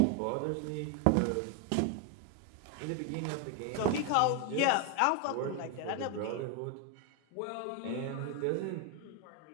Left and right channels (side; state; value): both; different; correlation 0.01